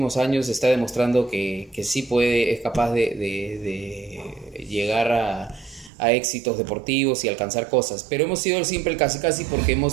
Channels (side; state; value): left; drops out; at 5.9 s